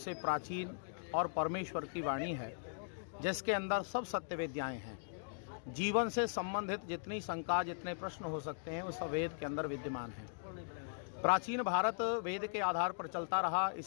प्राचीन और परमेश्वर की वाणी है, जिसके अंदर सब सत्य विद्याएं हैं। जीवन से संबंधित जितनी शंका, जितने प्रश्न हो सकते हैं, वो सब वेद के अंदर विद्यमान है। प्राचीन भारत वेद के आधार पर चलता रहा,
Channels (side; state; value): right; silent; digital silence